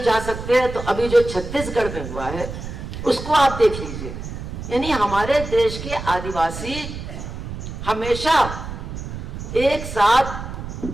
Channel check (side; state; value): right; noise; rumble, 8 dB below the sound